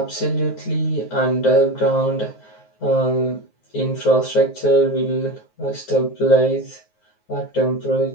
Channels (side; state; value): right; late; 9.5 ms